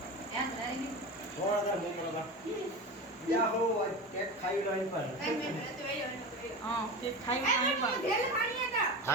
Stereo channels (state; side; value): normal; both; correlation 0.27